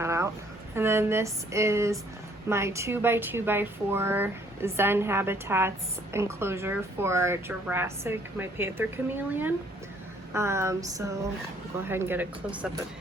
out. And then this is my 2x2x4 Zen Habitats enclosure for Jurassic, my Panther chameleon. So I'll go ahead and get a close-up of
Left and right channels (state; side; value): normal; both; correlation 0.62